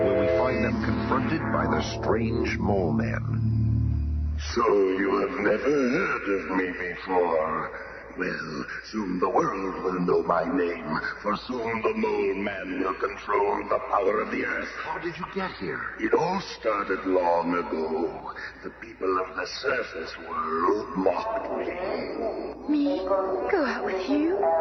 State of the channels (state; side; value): identical; both; correlation 1.00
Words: where we find them confronted by the strange Mole Man. So you have never heard of me before. Well, soon the world will know my name, for soon the Mole Man will control the power of the earth. How did you get here? It all started long ago. The people of the surface world mocked me. Me? Go out with you?